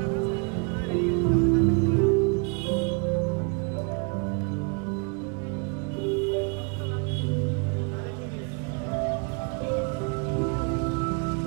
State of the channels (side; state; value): left; quieter; 35.2 dB